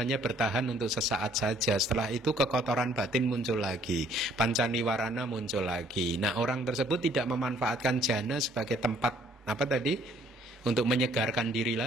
bertahan untuk sesaat saja. Setelah itu kekotoran batin muncul lagi, pancaniwarana muncul lagi. Nah, orang tersebut tidak memanfaatkan jana sebagai tempat untuk menyegarkan diri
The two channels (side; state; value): both; normal; correlation 0.62